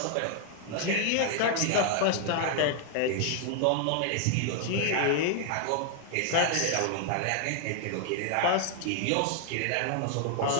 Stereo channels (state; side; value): different; both; correlation 0.00